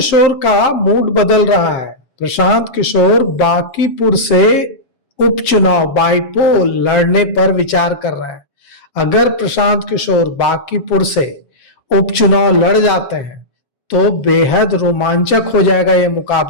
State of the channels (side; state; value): right; late; 7.6 ms